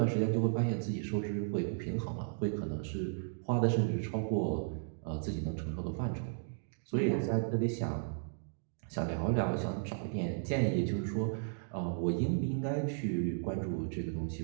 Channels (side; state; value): left; silent; digital silence